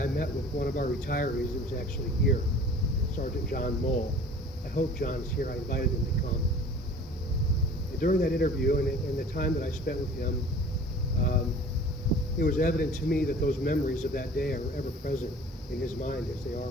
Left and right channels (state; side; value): normal; both; correlation 0.46